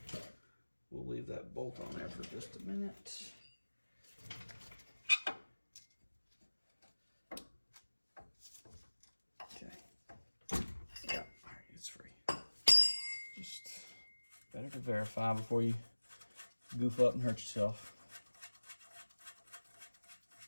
we'll leave that bolt on there for just a minute. Okay. Yeah, all right, it's free. Just better to verify before you goof up and hurt yourself.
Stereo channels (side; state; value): both; inverted; correlation -1.00